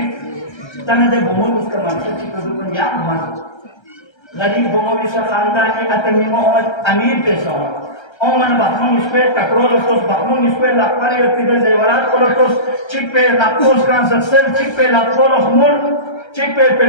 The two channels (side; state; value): right; late; 1.3 ms